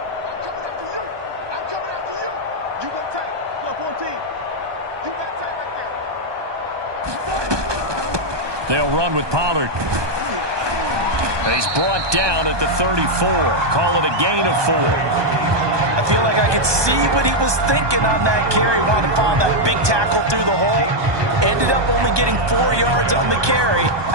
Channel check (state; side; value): late; left; 1.2 ms